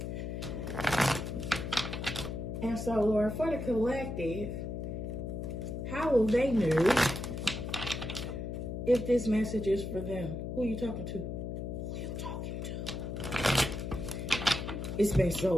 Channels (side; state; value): left; noise; hum, 4 dB below the sound